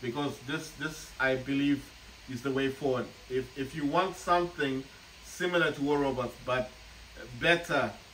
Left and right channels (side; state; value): both; identical; correlation 1.00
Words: this I believe is the way forward. If you want something similar to War Robots but better,